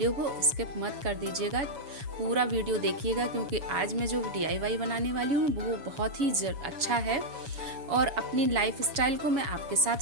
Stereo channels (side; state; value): left; late; 7.1 ms